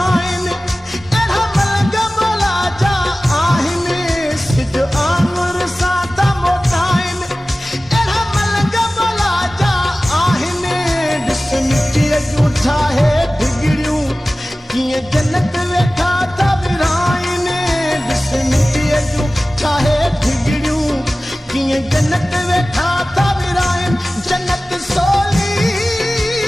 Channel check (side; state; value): both; normal; correlation 0.97